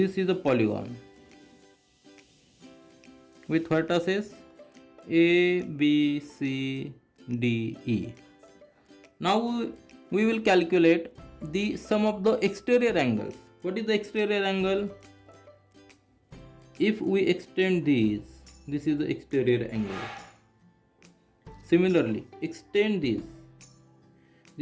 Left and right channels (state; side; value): identical; both; correlation 1.00